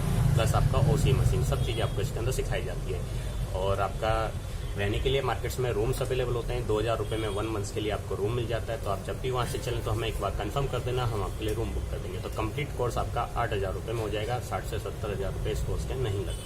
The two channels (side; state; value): both; identical; correlation 1.00